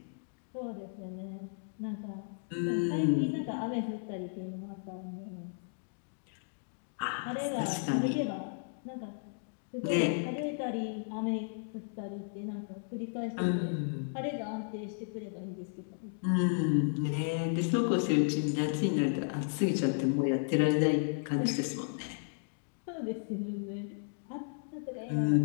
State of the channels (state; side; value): silent; right; digital silence